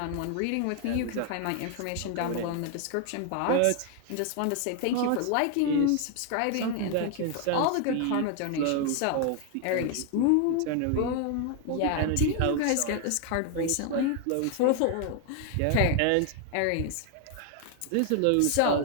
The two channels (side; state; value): both; different; correlation 0.00